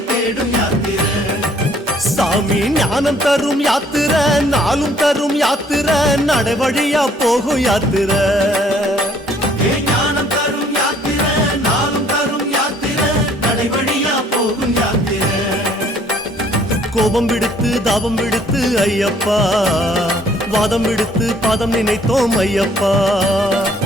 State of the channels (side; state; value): both; normal; correlation 0.61